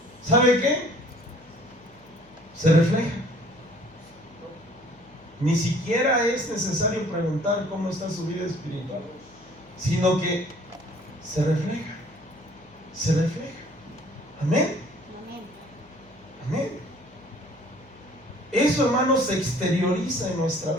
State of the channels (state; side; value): noise; left; hum, 27 dB below the sound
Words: ¿sabe qué? Se refleja. Ni siquiera es necesario preguntar cómo está su vida espiritual, sino que se refleja. Se refleja. Amén. Amén. Eso, hermanos, se exterioriza en nuestra